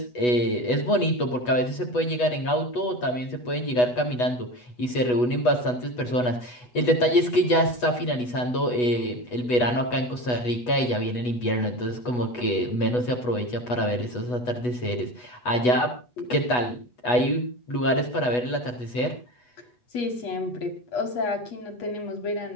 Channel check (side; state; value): right; late; 8.1 ms